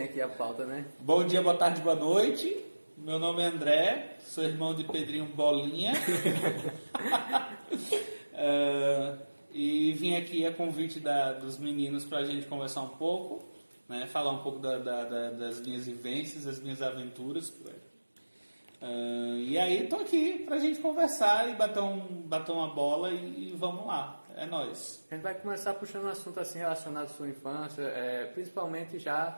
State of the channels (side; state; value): both; inverted; correlation -1.00